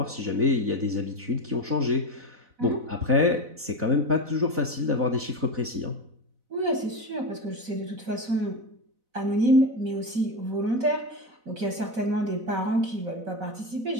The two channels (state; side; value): late; left; 4.0 ms